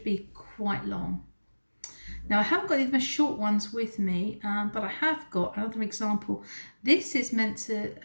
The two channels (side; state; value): both; inverted; correlation -1.00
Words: be quite long. Now I haven't got these short ones with me, but I have got another example. This is meant to